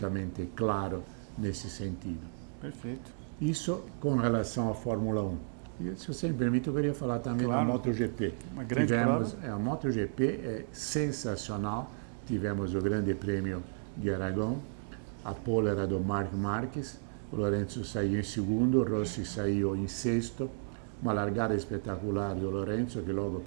claro nesse sentido. Perfeito. Isso com relação à Fórmula 1. E, se você me permite, eu queria falar também Claro. da MotoGP. Uma grande A MotoGP é sensacional. Tivemos o Grande Prêmio de Aragão. a pole era do Marc Marquez, o Lorenzo saiu em segundo, o Rossi saiu em sexto, uma largada espetacular do Lorenzo, que logo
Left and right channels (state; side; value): silent; left; digital silence